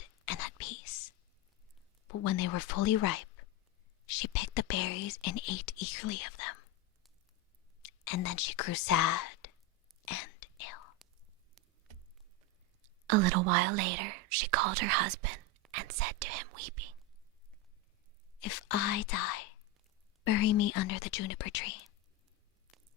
and at peace. But when they were fully ripe, she picked the berries and ate eagerly of them. And then she grew sad and ill. A little while later, she called her husband and said to him, weeping, "If I die, bury me under the juniper tree."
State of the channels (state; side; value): normal; both; correlation 0.12